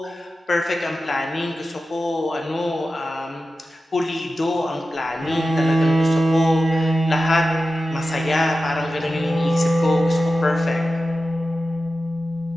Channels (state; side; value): normal; both; correlation 0.93